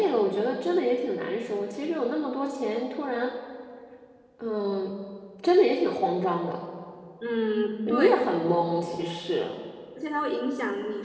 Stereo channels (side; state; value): both; identical; correlation 1.00